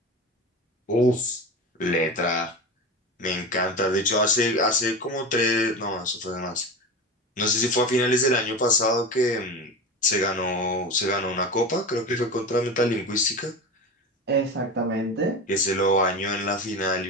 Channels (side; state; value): both; normal; correlation 0.27